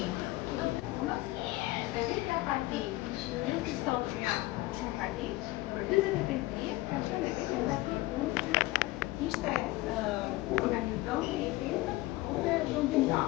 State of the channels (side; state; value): right; quieter; 19.2 dB